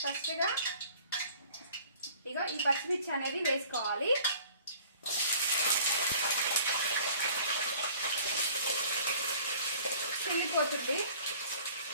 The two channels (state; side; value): inverted; both; correlation -0.51